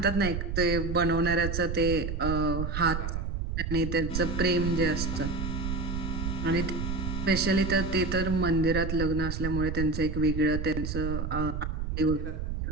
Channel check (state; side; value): noise; right; rumble, 3 dB below the sound